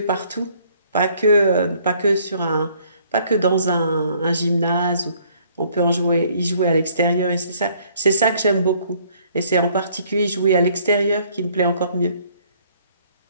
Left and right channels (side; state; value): both; inverted; correlation -0.62